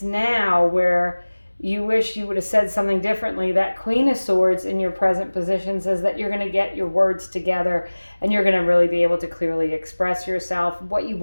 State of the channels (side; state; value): both; inverted; correlation -1.00